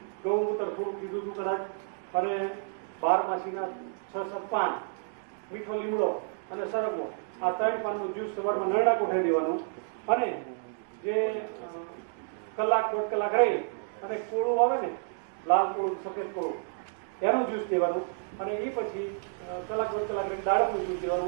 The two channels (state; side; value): silent; left; digital silence